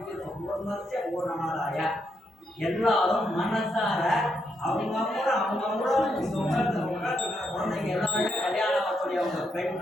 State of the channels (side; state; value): both; normal; correlation 0.80